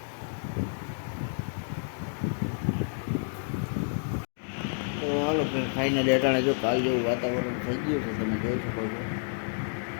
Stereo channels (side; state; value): right; silent; digital silence